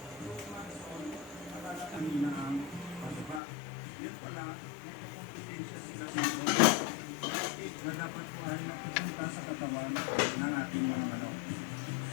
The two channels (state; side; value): drops out; right; at 3.4 s